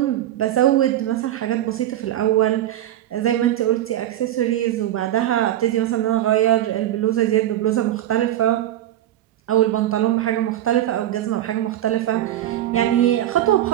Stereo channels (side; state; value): left; quieter; 12.9 dB